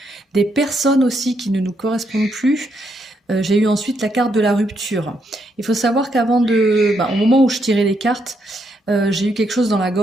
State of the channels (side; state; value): both; normal; correlation 0.77